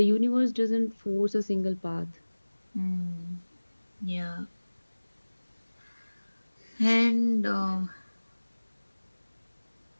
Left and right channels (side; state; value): both; inverted; correlation -1.00